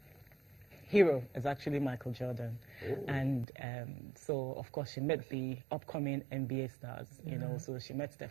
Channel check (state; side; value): drops out; left; at 3.5 s